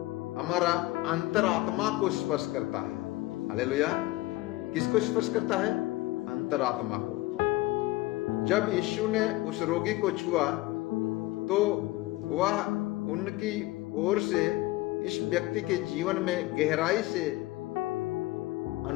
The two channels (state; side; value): quieter; right; 18.9 dB